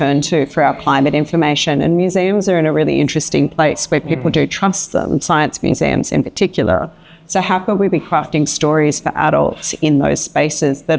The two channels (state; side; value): identical; both; correlation 1.00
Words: to for our climate information? And museums are in a really interesting place where people do trust them, science museums in particular. So how could we be crafting stories for adults in those spaces